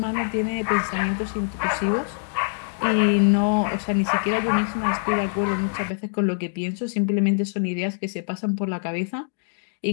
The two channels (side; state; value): right; silent; digital silence